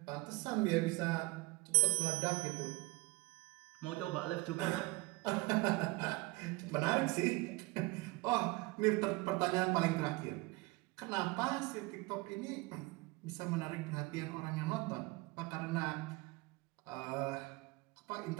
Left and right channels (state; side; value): quieter; left; 23.6 dB